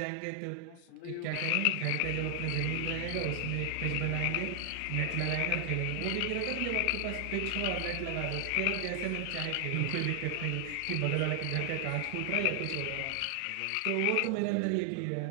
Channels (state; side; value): different; both; correlation 0.00